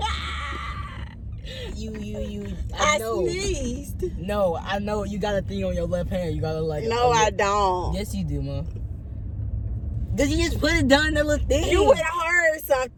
I know. Sneezed. No, I know. You got a thing on your left hand. You gotta like. No, I don't. Yes, you do, Mom. Did you just put it down that little thing? You would have heard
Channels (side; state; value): both; identical; correlation 1.00